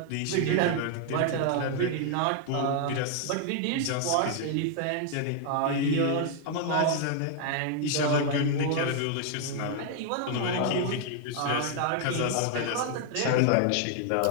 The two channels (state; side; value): different; both; correlation 0.00